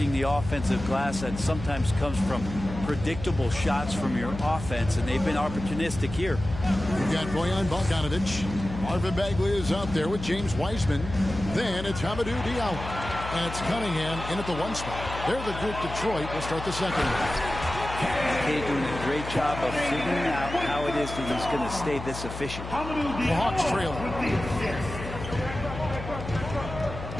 the offensive glass that sometimes comes from predictable shots from your offense, and they've been opportunistic here. We've got Bojan Bogdanovic. Marvin Bagley is out there with James Wiseman. Then it's Hamidou Diallo. And it's Cunningham in at the one spot. They're the group Detroit will start the second. McKay doing a great job of figuring out how it is that he's going to stay this efficient. The Hawks trail.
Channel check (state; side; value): noise; left; hum, 9 dB below the sound